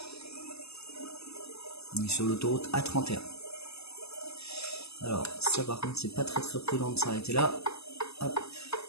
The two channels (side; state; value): right; late; 0.79 ms